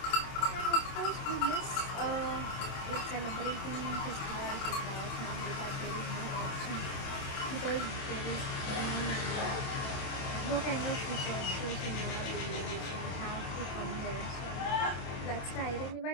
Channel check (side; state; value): right; late; 26 ms